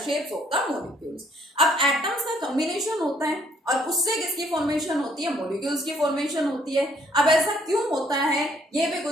shapes of the molecules. अब एटम्स का कॉम्बिनेशन होता है और उससे किसकी फॉर्मेशन होती है, मॉलिक्यूल्स की फॉर्मेशन होती है। अब ऐसा क्यों होता है ये भी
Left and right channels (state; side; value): normal; both; correlation 0.64